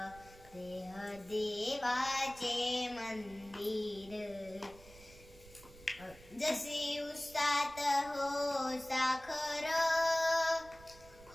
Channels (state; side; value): noise; right; rumble, 21 dB below the sound